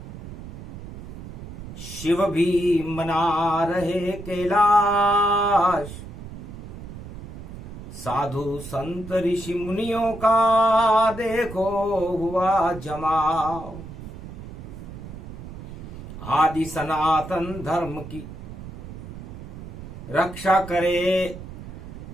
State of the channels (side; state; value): right; noise; rumble, 12 dB below the sound